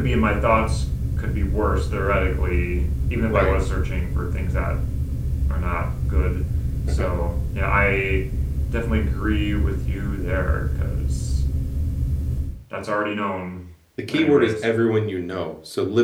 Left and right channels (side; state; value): both; identical; correlation 1.00